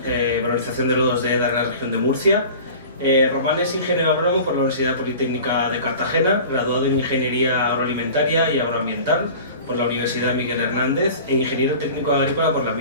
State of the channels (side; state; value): both; inverted; correlation -0.40